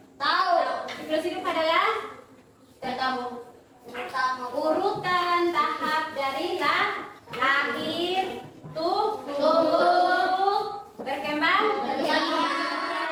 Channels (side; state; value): both; identical; correlation 1.00